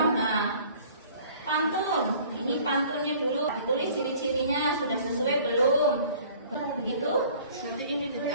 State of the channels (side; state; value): both; inverted; correlation -0.51